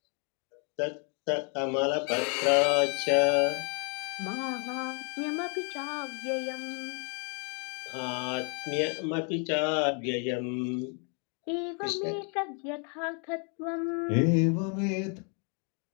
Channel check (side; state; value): right; quieter; 38.4 dB